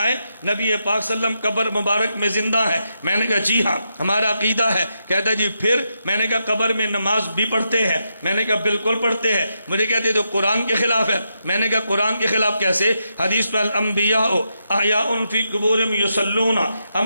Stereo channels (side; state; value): both; inverted; correlation -0.83